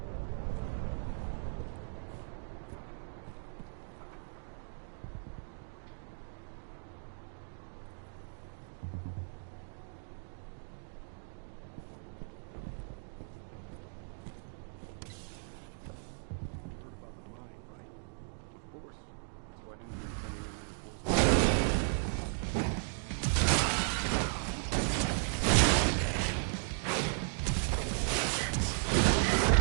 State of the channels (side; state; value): left; silent; 54 dB below the other